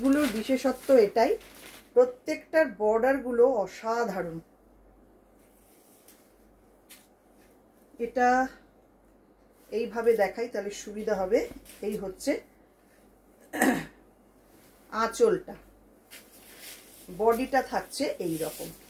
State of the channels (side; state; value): both; identical; correlation 1.00